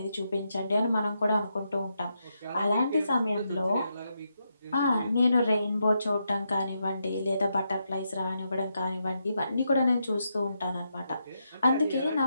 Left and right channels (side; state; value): both; inverted; correlation -0.83